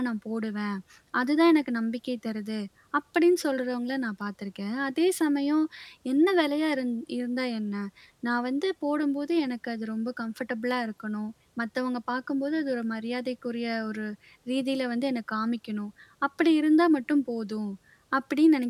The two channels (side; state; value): both; identical; correlation 1.00